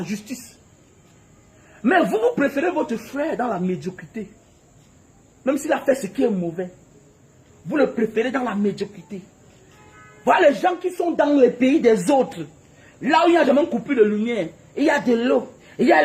justice. Mais vous préférez votre frère dans la médiocrité. Même s'il a fait ce qui est mauvais. Vous le préférez dans la médiocrité. Voilà les gens qui sont dans les pays des autres. Là où il n'y a jamais coupé de lumière. Il y a de l'eau. Il y a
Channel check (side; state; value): both; identical; correlation 1.00